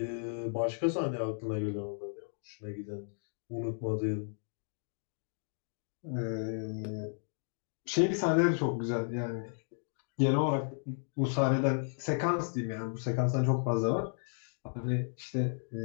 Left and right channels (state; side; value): silent; right; 55 dB below the other